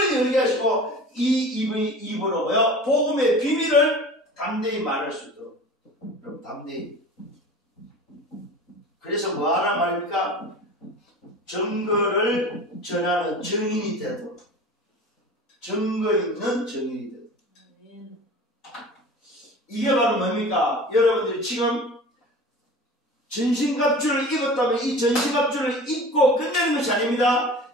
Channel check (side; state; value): both; normal; correlation 0.38